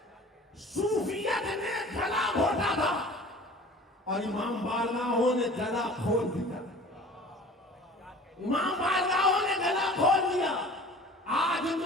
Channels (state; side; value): normal; both; correlation 0.44